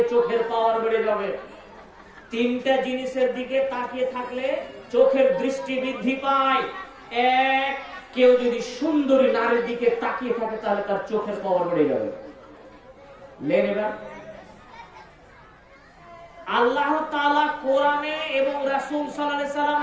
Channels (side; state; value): both; identical; correlation 1.00